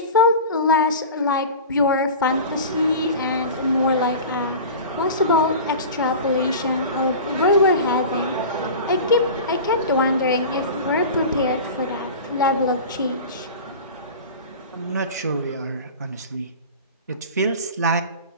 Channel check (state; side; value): inverted; both; correlation -0.34